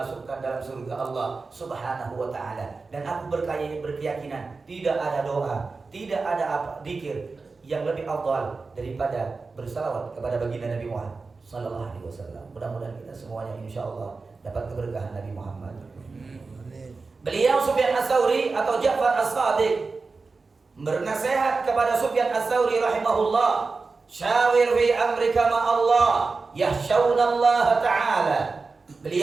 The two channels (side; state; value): left; quieter; 4.1 dB